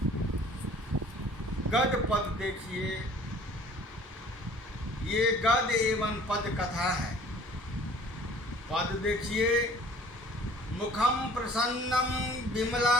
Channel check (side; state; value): both; normal; correlation 0.51